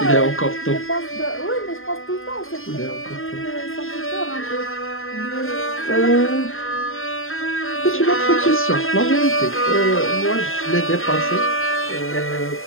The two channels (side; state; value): right; late; 0.60 ms